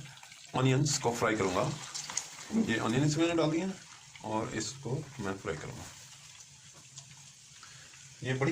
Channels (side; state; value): both; identical; correlation 1.00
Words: ऑनियंस को फ्राई करूंगा। ये ऑनियंस मैंने डाल दिए और इसको मैं फ्राई करूंगा। ये